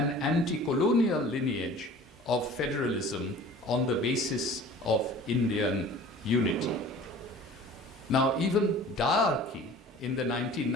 anti-colonial lineage of federalism on the basis of Indian unity. Now, even diarchy in the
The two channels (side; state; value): both; normal; correlation 0.44